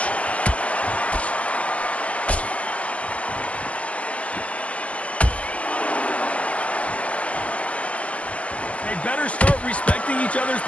They better start respecting each other's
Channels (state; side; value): late; right; 0.064 ms